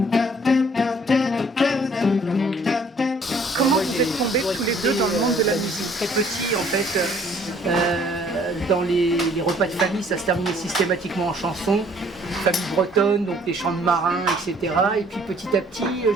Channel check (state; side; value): normal; both; correlation 0.59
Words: Comment vous êtes tombés tous les deux dans le monde de la musique? Très petit en fait, dans les repas de famille, ça se terminait systématiquement en chansons, famille bretonne, donc des chants de marins, etc. Et puis petit à petit,